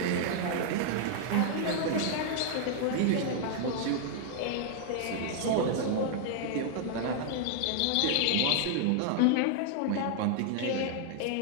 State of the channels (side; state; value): both; different; correlation -0.01